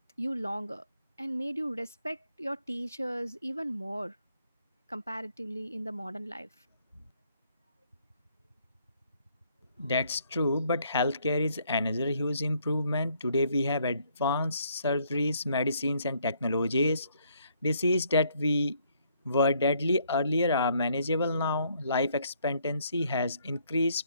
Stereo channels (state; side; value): inverted; both; correlation -0.68